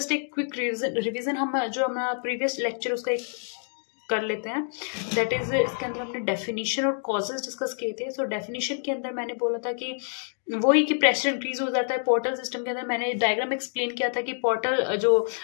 एक क्विक रिवीजन हम जो हमारा प्रीवियस लेक्चर उसका एक कर लेते हैं। दैट इज इसके अंदर हमने डेफिनेशन और कॉजेज डिस्कस किए थे। सो डेफिनेशन के अंदर मैंने बोला था कि वही कि प्रेशर इंक्रीज हो जाता है पोर्टल सिस्टम के अंदर। मैंने डायग्राम एक्सप्लेन किया था कि पोर्टल जो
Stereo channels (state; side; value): silent; right; 60 dB below the other